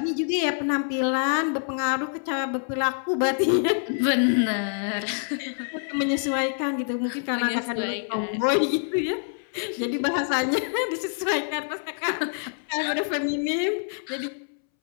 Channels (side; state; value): right; silent; 61 dB below the other